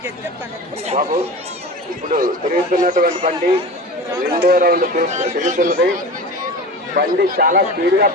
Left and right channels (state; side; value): normal; both; correlation 0.32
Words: బాబు. ఇప్పుడు తిరుగుతున్నటువంటి బండి రెండో రౌండ్ తిరుగుతున్నది. బండి చాలా స్పీడ్ గా